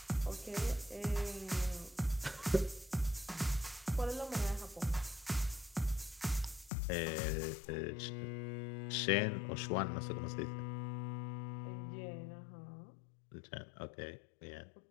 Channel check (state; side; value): drops out; right; at 6.7 s